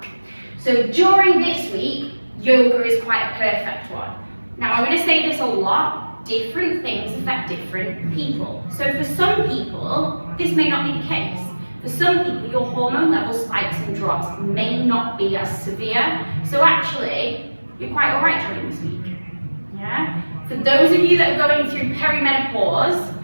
So during this week, yoga is quite a perfect one. Now, I'm going to say this a lot. Different things affect different people. So for some people, this may not be the case. For some people, your hormone level spikes and drops may not be as severe. So actually, you're quite all right during this week. Yeah? For those of you that are going through perimenopause,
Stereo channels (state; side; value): inverted; both; correlation -1.00